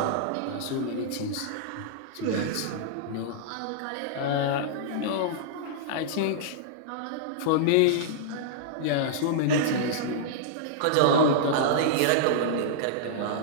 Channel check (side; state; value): both; different; correlation -0.02